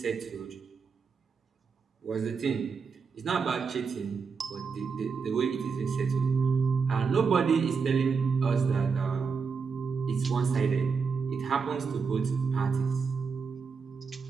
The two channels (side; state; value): left; quieter; 5.4 dB